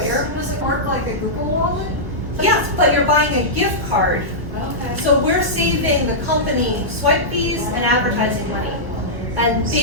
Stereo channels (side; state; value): both; normal; correlation -0.12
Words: Does it work like a Google Wallet? Yes, but you're buying a gift card. Okay. So we're saving the company swipe fees and advertising money. And